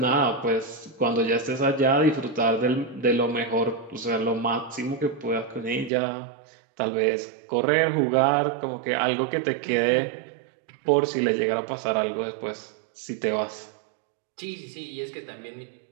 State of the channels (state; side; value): drops out; left; at 5.9 s